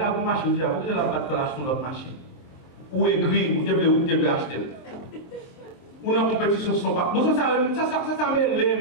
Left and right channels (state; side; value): late; right; 23 ms